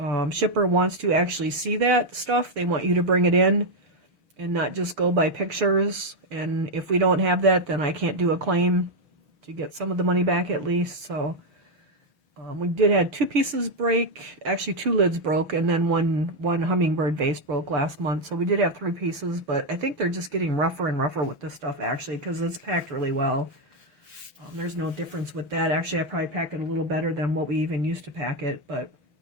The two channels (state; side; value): late; left; 6.3 ms